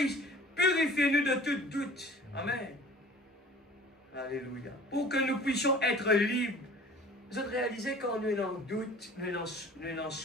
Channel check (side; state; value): both; normal; correlation 0.46